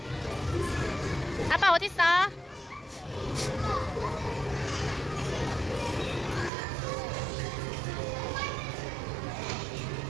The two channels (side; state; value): left; drops out; at 6.5 s